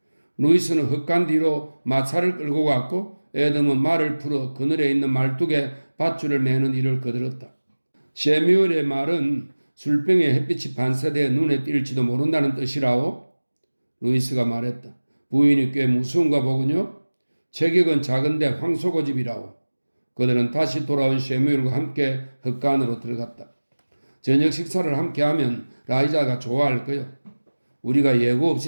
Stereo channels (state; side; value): inverted; both; correlation -1.00